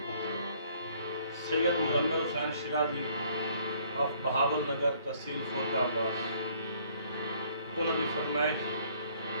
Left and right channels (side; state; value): both; inverted; correlation -0.61